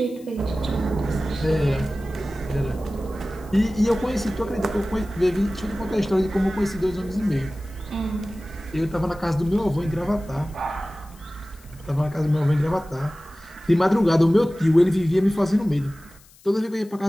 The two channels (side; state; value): left; noise; hiss, 26 dB below the sound